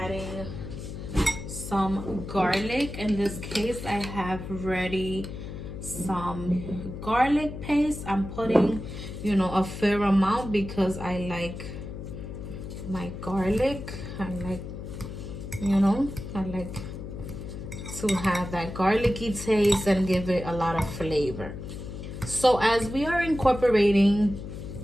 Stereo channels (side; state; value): left; noise; hum, 9 dB below the sound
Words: some garlic. In this case, I have ready some garlic paste. I'm putting a fair amount because I like my garlic. I like to have that garlicky taste and give it a lot of flavor. So as we are incorporating